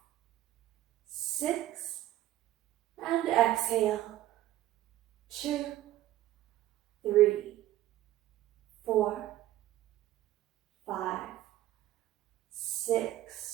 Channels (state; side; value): quieter; left; 14.4 dB